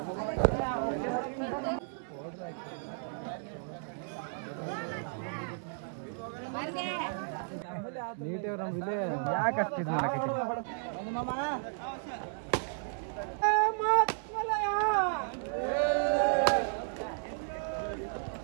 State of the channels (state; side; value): silent; left; digital silence